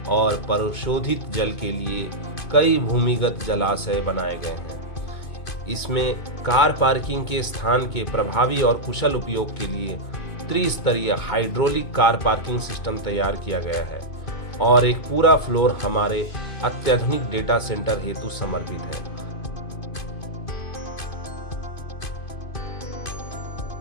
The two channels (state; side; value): late; right; 2.2 ms